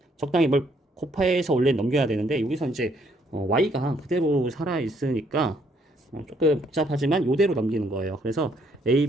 적당히 뭘 곱해서 원래 넘겨야 되는데 여기서 이제 Y가 그대로 살아있으니까 조금 복잡하지만 이대로 넘기는 거예요. 그래서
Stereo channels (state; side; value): normal; both; correlation 0.69